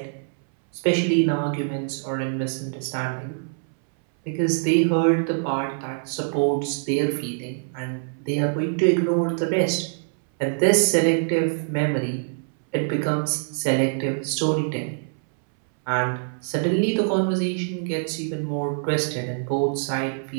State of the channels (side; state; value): left; silent; 62 dB below the other